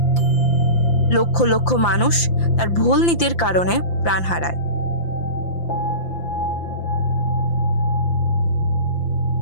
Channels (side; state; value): right; late; 5.8 ms